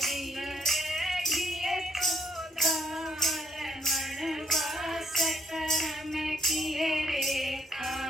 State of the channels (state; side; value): normal; both; correlation 0.70